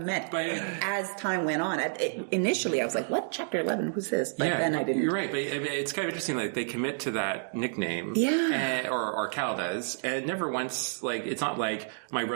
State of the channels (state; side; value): silent; left; digital silence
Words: meant. As time went on, initially I was like, what? Chapter 11? Who's this? But then I didn't. You're right, but it's kind of interesting. Like they commit to that nickname, or Cal does, and never once it's not like my